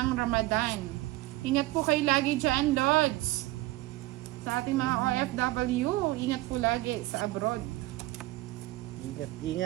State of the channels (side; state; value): left; quieter; 18.6 dB